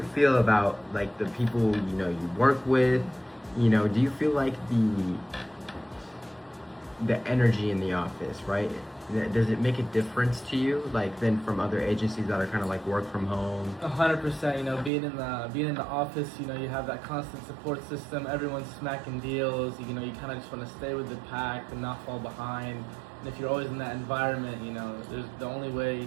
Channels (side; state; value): left; drops out; at 14.9 s